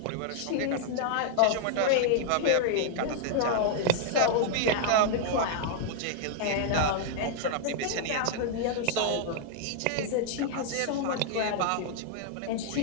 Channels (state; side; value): different; both; correlation 0.00